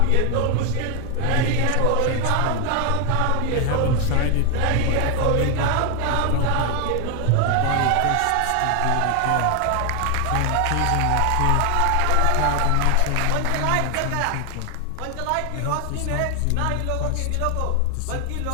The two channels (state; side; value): different; both; correlation 0.01